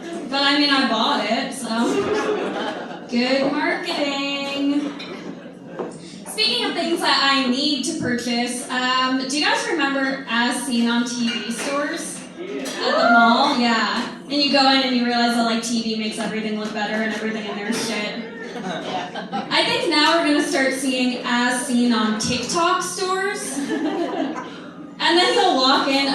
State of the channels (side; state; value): both; identical; correlation 1.00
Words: But I mean, I bought it, so good marketing. Speaking of things that I need to purchase, do you guys remember As Seen on TV stores? At the mall? Yeah. And you go in and you realize that like TV makes everything look better and everything in there is shit. I think now we're going to start seeing As Seen on TikTok stores. And then you'll walk in